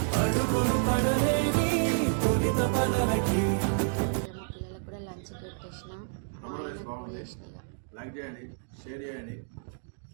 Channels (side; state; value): left; silent; digital silence